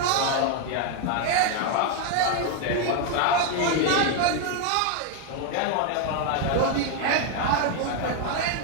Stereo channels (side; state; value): both; different; correlation 0.01